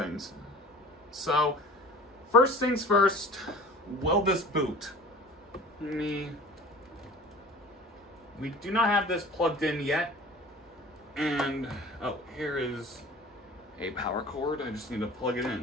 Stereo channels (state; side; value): normal; both; correlation 0.42